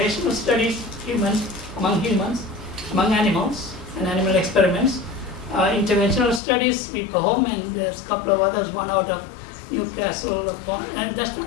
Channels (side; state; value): right; drops out; at 6.4 s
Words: studies, among animals, and animal experiments. Interventional studies, we go home, and there's a couple of others, one out of Newcastle, and that's